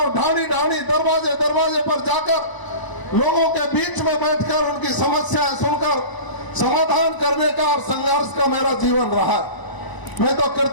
ढाणी ढाणी दरवाजे दरवाजे पर जाकर लोगों के बीच में बैठकर उनकी समस्याएं सुनकर समाधान करने का और संघर्ष का मेरा जीवन रहा। मैं तो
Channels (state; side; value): late; right; 1.0 ms